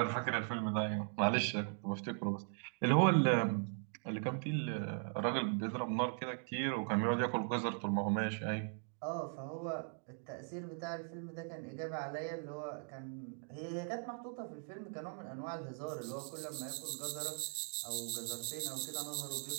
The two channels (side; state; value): left; silent; 52 dB below the other